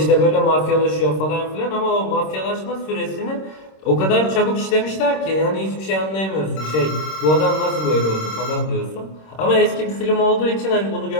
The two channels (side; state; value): right; late; 26 ms